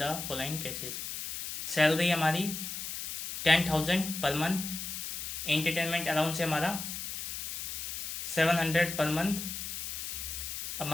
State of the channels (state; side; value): noise; left; hiss, 6 dB below the sound